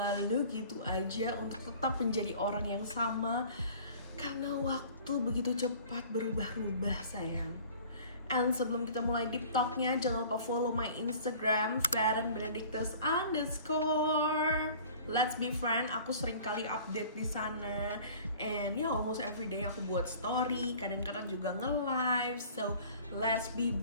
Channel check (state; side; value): inverted; both; correlation -0.47